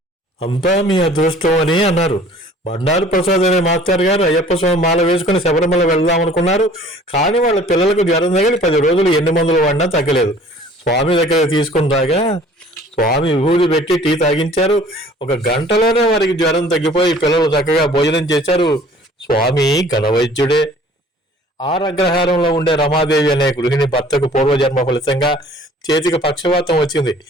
అంతా మీ అదృష్టం అని అన్నారు. బండారు ప్రసాద్ అనే మాస్టర్ గారు అయ్యప్ప స్వామి మాల వేసుకుని శబరిమల వెళ్దాం అనుకున్నారు. కానీ వాళ్ళ పిల్లలకు జ్వరం తగిలి 10 రోజులు ఎన్ని మందులు వాడినా తగ్గలేదు. స్వామి దగ్గర తీసుకుని రాగా స్వామి విభూతి పెట్టి టీ తాగించారు. 1 గంటలోనే వారికి జ్వరం తగ్గిపోయి పిల్లలు చక్కగా భోజనం చేశారు. స్వామి ఘనవైద్యుడే. ఆరగ్రహారంలో ఉండే రమాదేవి అనే గృహిణి భర్తకు పూర్వజన్మ ఫలితంగా చేతికి పక్షవాతం వచ్చింది.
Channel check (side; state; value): both; normal; correlation 0.52